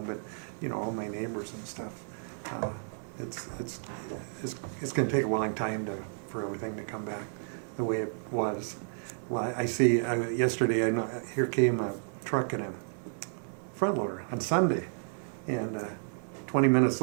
but you know, all my neighbors and stuff. It's going to take a long time for everything to come back the way it was. Well, I see. Yesterday, here came a truck and a front loader on Sunday, and 20 minutes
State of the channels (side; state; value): left; silent; 57 dB below the other